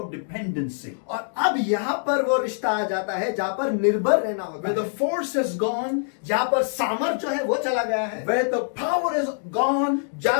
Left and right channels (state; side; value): silent; right; digital silence